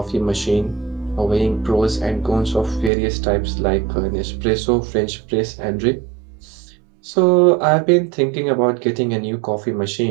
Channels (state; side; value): drops out; left; at 2.9 s